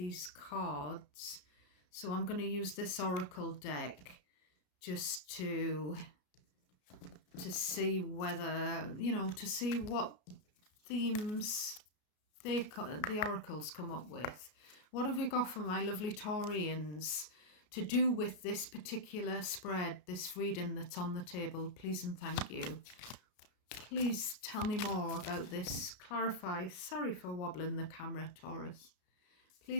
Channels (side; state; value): right; late; 33 ms